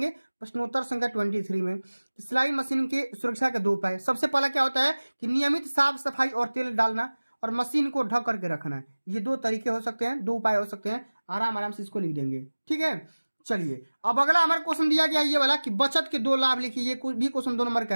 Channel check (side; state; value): both; inverted; correlation -1.00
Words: प्रश्नोत्तर संख्या 23 में सिलाई मशीन की सुरक्षा के 2 उपाय। सबसे पहला क्या होता है कि नियमित साफ सफाई और तेल डालना और मशीन को ढक करके रखना। ये 2 तरीके हो सकते हैं, 2 उपाय हो सकते हैं। आराम आराम से इसको लिख देंगे, ठीक है। चलिए अब अगला हमारा क्वेश्चन दिया गया ये वाला कि बचत के 2 लाभ लिखिए। ये भी क्वेश्चन 2 नंबर का